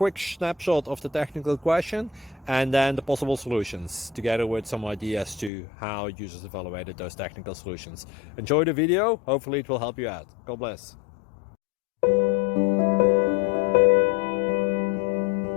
snapshot of the technical question and then the possible solutions, together with some ideas to how users evaluated those technical solutions. Enjoy the video, hopefully it will help you out. God bless.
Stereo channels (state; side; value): drops out; right; at 5.5 s